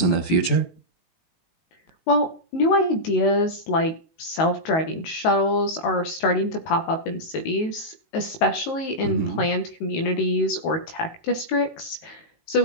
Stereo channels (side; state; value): right; late; 19 ms